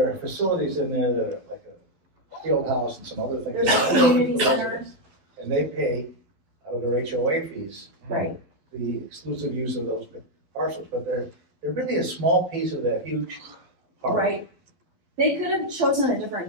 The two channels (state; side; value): late; left; 12 ms